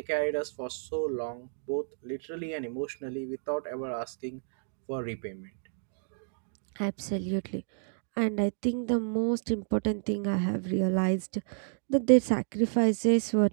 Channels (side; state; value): left; silent; digital silence